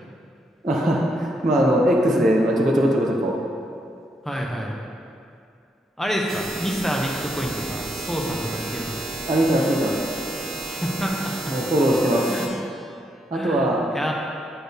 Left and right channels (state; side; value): normal; both; correlation 0.77